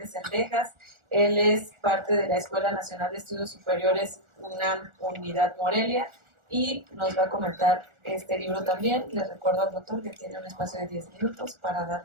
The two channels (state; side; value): late; left; 1.4 ms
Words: Sendejas. Él es parte de la Escuela Nacional de Estudios Superiores UNAM Unidad Morelia y nos va a comentar este libro también. Les recuerdo al doctor que tiene un espacio de 10 minutos para